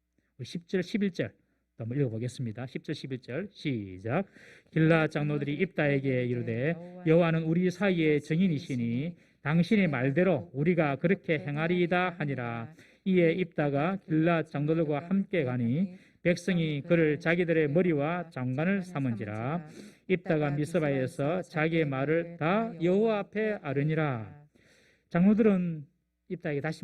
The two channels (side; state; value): both; identical; correlation 1.00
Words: 우리 10절, 11절 한번 읽어보겠습니다. 10절, 11절 시작. 길르앗 장로들이 입다에게 이르되 여호와는 우리 사이의 증인이시니 당신의 말대로 우리가 그렇게 행하리이다 하니라. 이에 입다가 길르앗 장로들과 함께 가니 백성이 그를 자기들의 머리와 장관을 삼은지라. 입다가 미스바에서 자기의 말을 다 여호와 앞에 아뢰니라. 장로들은 입다에게 다시